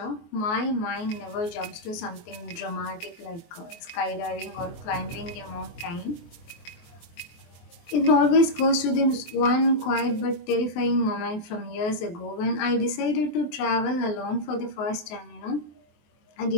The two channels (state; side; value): late; right; 24 ms